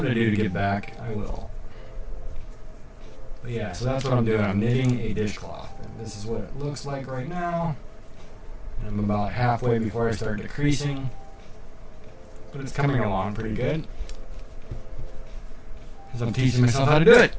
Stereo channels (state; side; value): identical; both; correlation 1.00